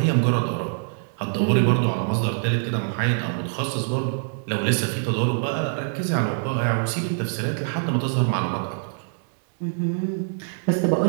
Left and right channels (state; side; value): silent; left; digital silence